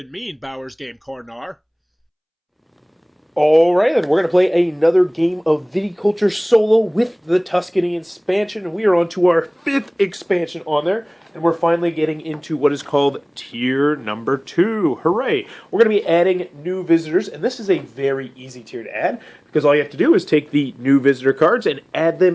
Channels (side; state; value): both; identical; correlation 1.00